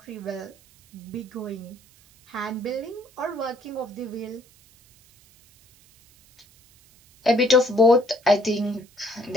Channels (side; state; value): right; noise; hiss, 28 dB below the sound